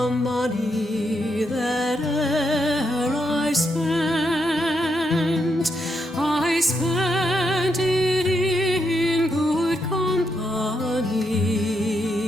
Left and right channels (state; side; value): normal; both; correlation 0.80